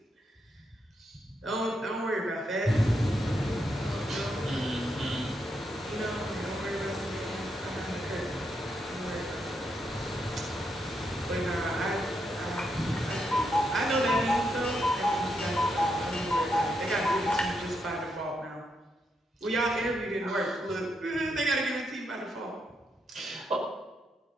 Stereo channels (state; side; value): normal; both; correlation 0.80